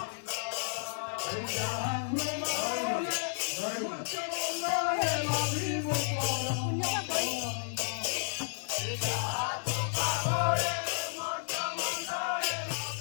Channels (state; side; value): silent; right; digital silence